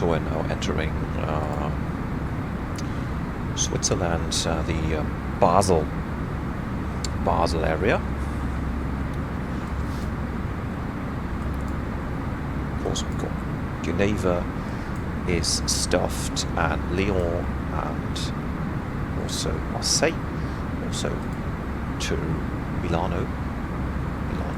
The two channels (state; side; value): identical; both; correlation 1.00